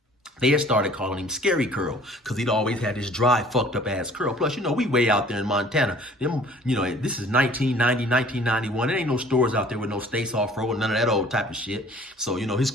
they had started calling him Scary Curl, because he'd always had this dry, fucked up ass curl. Plus, we way out there in Montana. This is 1990, 1991. There ain't no stores out there with no States Off-Road, none of that old type of shit. So, his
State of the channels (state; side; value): normal; both; correlation 0.52